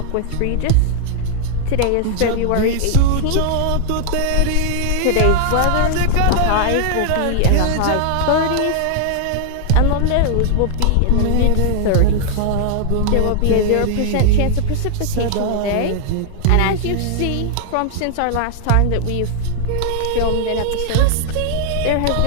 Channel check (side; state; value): both; different; correlation -0.01